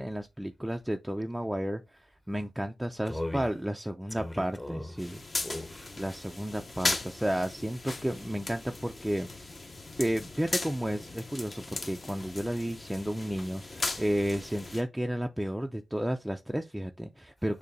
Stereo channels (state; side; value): normal; both; correlation 0.98